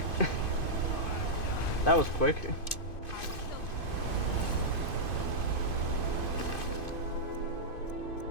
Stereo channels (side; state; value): right; late; 2.5 ms